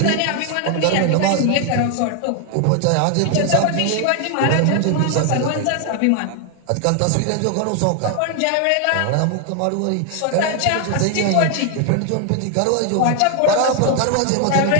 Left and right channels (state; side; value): different; both; correlation 0.00